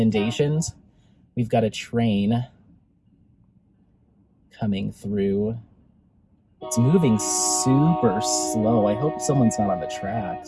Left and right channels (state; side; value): identical; both; correlation 1.00